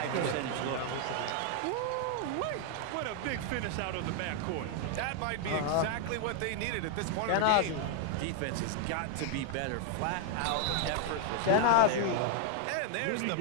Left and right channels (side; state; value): both; different; correlation 0.00